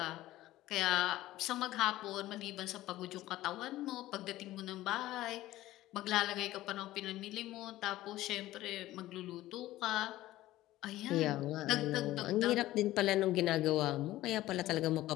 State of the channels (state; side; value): quieter; right; 15.8 dB